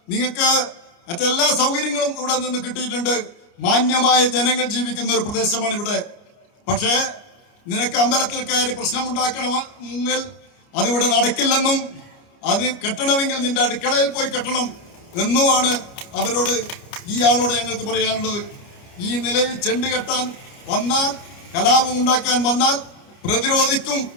നിങ്ങൾക്ക് മറ്റെല്ലാ സൗകര്യങ്ങളും ഇവിടെ നിന്ന് കിട്ടിയിട്ടുണ്ട്. മാന്യമായ ജനങ്ങൾ ജീവിക്കുന്ന ഒരു പ്രദേശമാണ് ഇവിടെ. പക്ഷേ നിനക്ക് അമ്പലത്തിൽ കയറി പ്രശ്നമുണ്ടാക്കണമെങ്കിൽ അതിവിടെ നടക്കില്ലെന്നും അത് കെട്ടണമെങ്കിൽ നിന്റെ അടുക്കളയിൽ പോയി കെട്ടണം എന്നുമാണ് ഈ ആളോട് ഞങ്ങൾക്ക് പറയാനുള്ളത്. ഈ നിലയിൽ ചെണ്ട് കെട്ടാൻ വന്നാൽ, കലാപം ഉണ്ടാക്കാൻ വന്നാൽ പ്രതിരോധിക്കും.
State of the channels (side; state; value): right; late; 29 ms